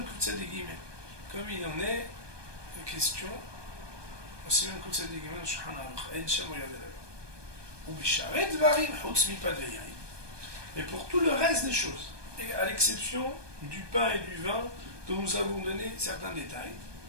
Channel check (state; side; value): late; left; 1.2 ms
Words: Koutsa de Guillemets. Comme il en est question, Bessiman Koutsa de Guillemets, Shulchan Aruch, Ein Shem regardez là-bas. Ou Bisharet Dvarim, Chutz Mipad Ve'yayin. Mais pour tout le reste des choses, et à l'exception du pain et du vin, dont nous avons donné certains détails,